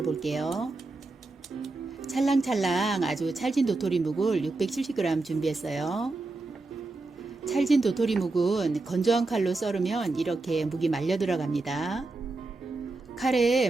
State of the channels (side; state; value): left; quieter; 3.3 dB